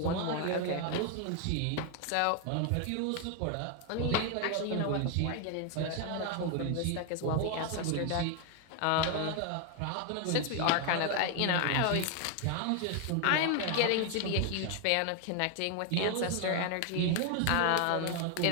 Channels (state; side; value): different; both; correlation 0.01